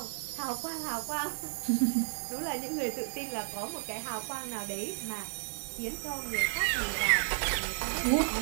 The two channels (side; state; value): left; silent; 56 dB below the other